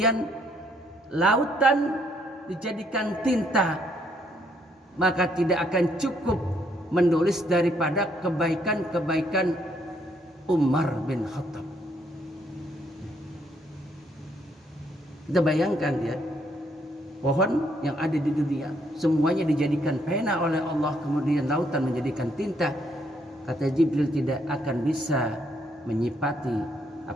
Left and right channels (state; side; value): normal; both; correlation 0.70